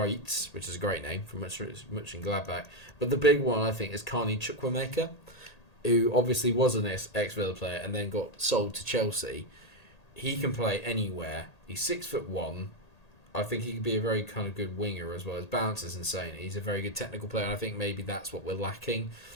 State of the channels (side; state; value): right; late; 1.8 ms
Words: which is a great name from Mönchengladbach. But the big one, I think, is Carney Chukwuemeka, who obviously was an ex-Villa player and then got sold to Chelsea. He can play anywhere. He's 6'1". I think he could be a very kind of good winger as well. His balance is insane. He's a very good technical player, and I think maybe that's what we're lacking